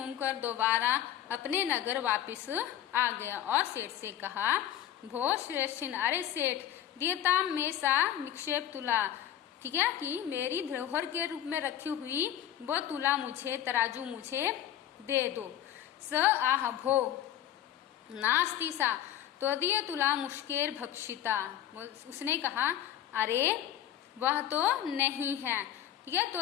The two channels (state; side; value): quieter; right; 11.3 dB